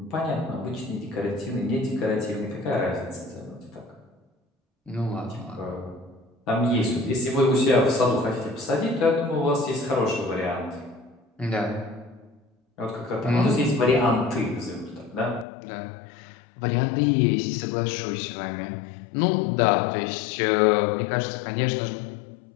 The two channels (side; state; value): right; drops out; at 15.5 s